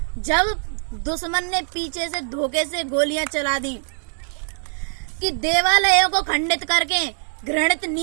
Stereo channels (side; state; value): left; silent; digital silence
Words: जब दुश्मन ने पीछे से धोखे से गोलियां चला दी, कि देवालयों को खंडित करके घृणित